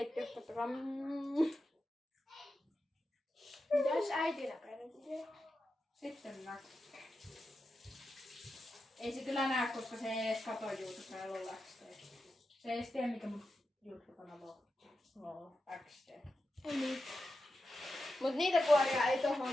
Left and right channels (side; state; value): both; normal; correlation 0.90